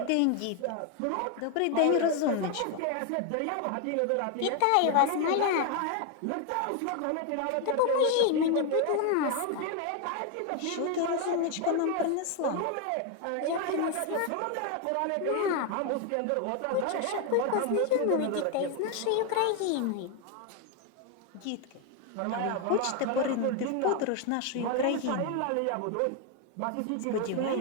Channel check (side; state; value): both; different; correlation 0.01